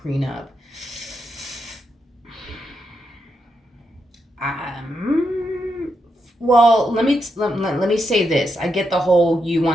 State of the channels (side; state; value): both; normal; correlation 0.83